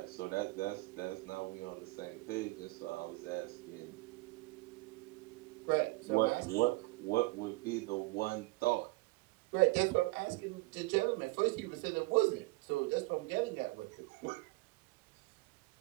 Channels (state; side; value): quieter; left; 21.4 dB